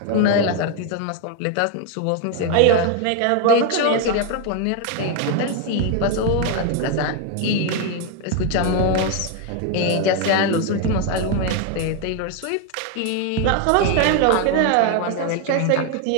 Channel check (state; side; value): different; both; correlation 0.01